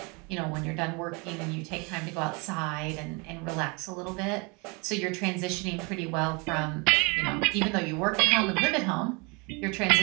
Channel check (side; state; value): left; quieter; 29.9 dB